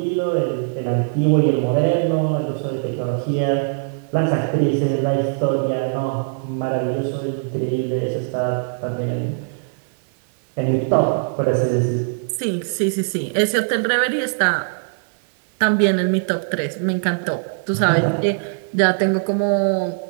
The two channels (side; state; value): left; silent; digital silence